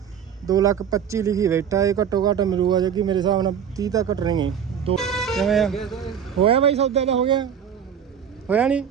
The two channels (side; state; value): left; quieter; 8.2 dB